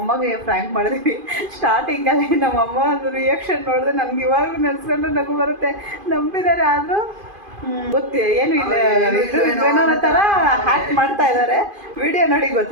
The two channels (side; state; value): left; late; 2.5 ms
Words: ಅಮ್ಮಗೆ ಫ್ರ್ಯಾಂಕ್ ಮಾಡಿದ್ವಿ. ಸ್ಟಾರ್ಟಿಂಗಲ್ಲಿ ನಮ್ಮಮ್ಮ ಒಂದು ರಿಯಾಕ್ಷನ್ ನೋಡಿದ್ರೆ ನನಗೆ ಇವಾಗೂ ನೆನೆಸ್ಕೊಂಡು ನಗು ಬರುತ್ತೆ. ನಂಬಿದ್ದಾರೆ, ಆದರೂ ಏನು ಇಲ್ಲ, ಏನೋ ಥರ ಹ್ಯಾಕ್ ಮಾಡ್ತಾ ಇದ್ದಾರೆ. ವಿಡಿಯೋ ನೋಡಿ